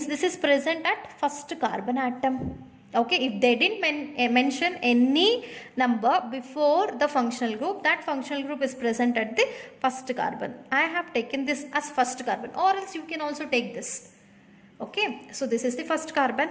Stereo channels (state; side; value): identical; both; correlation 1.00